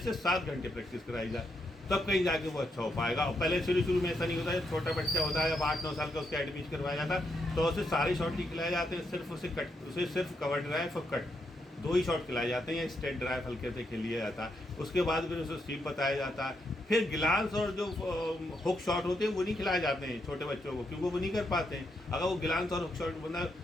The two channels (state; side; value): normal; both; correlation 0.80